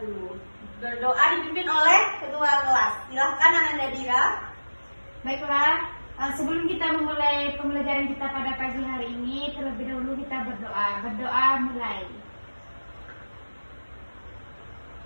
Berdoa dipimpin oleh ketua kelas. Silahkan Ananda Dira. Baiklah, sebelum kita memulai pembelajaran kita pada pagi hari ini, terlebih dahulu kita berdoa. Berdoa mulai.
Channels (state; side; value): inverted; both; correlation -1.00